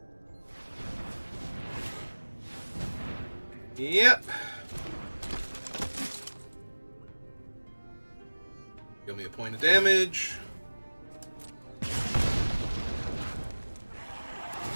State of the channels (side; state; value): both; inverted; correlation -1.00